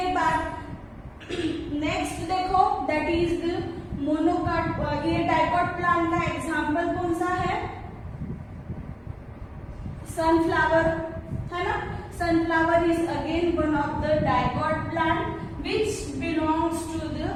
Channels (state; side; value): identical; both; correlation 1.00